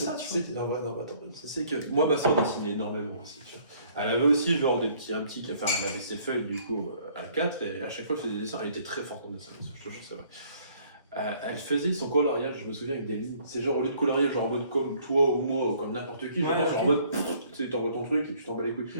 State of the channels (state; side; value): inverted; both; correlation -0.60